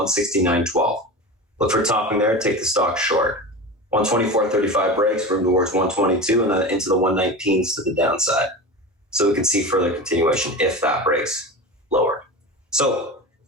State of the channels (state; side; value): normal; both; correlation 0.28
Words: Look for topping there, take the stock short. 124.35 breaks, room towards 122, and then into the 119s to the downside. So we can see further continuation if that breaks lower. So